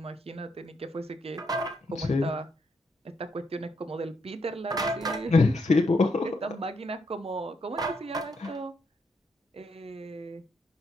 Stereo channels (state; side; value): normal; both; correlation 0.78